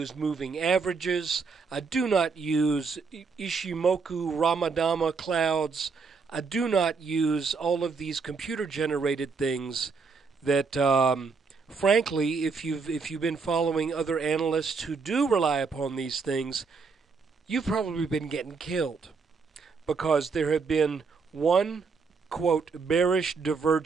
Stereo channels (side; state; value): left; quieter; 4.9 dB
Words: moving averages, I do not use Ishimoku Ramadama clouds, I do not use all of these computer-generated things that frankly, if you've been following other analysts who do rely upon these things, you've probably been getting killed, because there have been one, quote, bearish